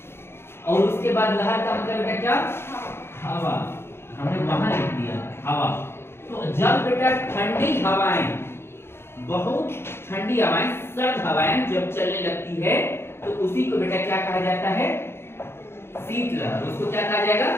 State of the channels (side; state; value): right; late; 0.12 ms